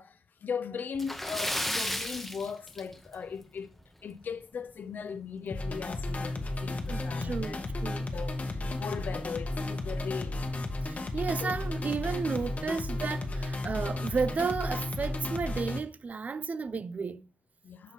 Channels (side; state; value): both; normal; correlation 0.84